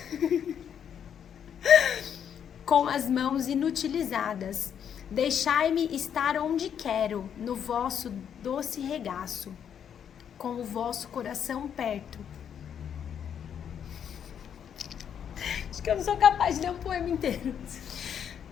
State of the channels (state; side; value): quieter; right; 8.5 dB